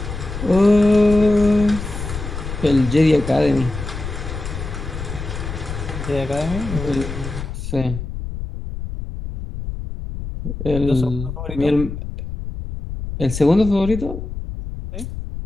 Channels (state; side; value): noise; left; rumble, 7 dB below the sound